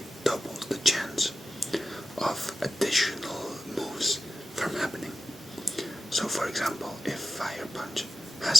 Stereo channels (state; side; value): normal; both; correlation 0.90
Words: doubles the chance of additional moves from happening. So for example, if Fire Punch